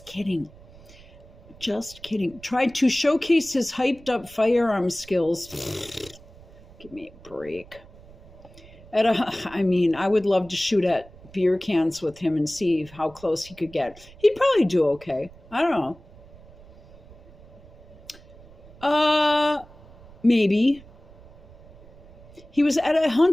kidding. Just kidding. Tried to showcase his hyped up firearm skills. Give me a break. I would love to shoot at beer cans with him and see how close he could get. He'd probably do okay. I don't know. Maybe. He was at a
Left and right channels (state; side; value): noise; right; rumble, 22 dB below the sound